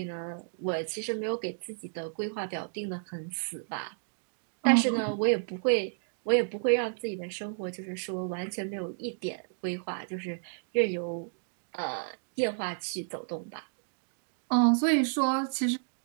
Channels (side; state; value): left; silent; digital silence